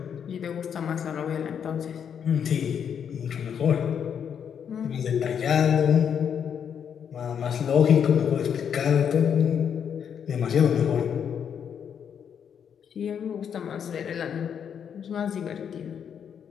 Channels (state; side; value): quieter; right; 7.9 dB